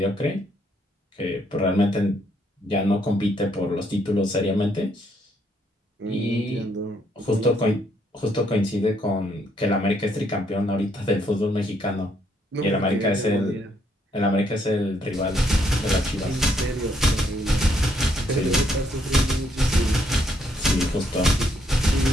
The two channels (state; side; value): normal; both; correlation 0.72